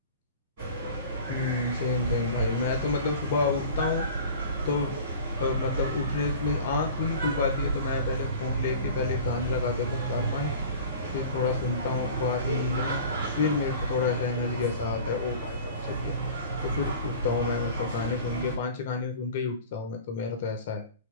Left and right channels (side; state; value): both; inverted; correlation -0.41